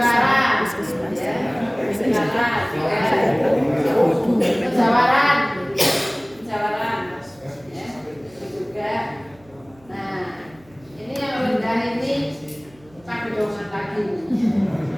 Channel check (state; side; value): noise; right; hum, 28 dB below the sound